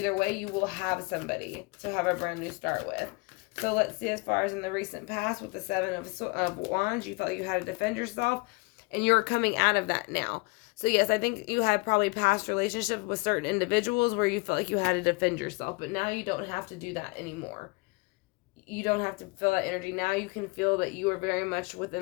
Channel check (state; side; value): quieter; right; 27.6 dB